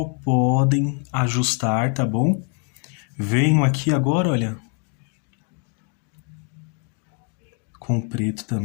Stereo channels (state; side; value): quieter; right; 37.9 dB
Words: podem ajustar, tá bom? Venho aqui agora, olha, com preto